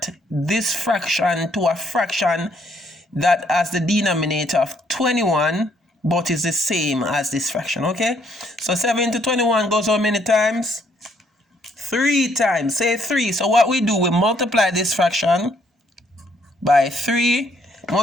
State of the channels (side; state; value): both; normal; correlation 0.69